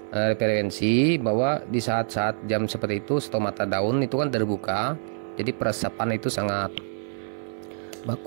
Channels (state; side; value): silent; left; 58 dB below the other